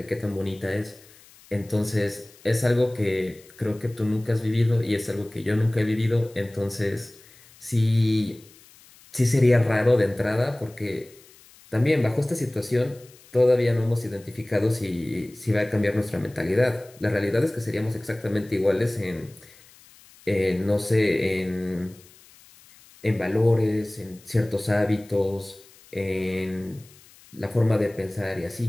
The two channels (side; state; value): left; noise; hiss, 25 dB below the sound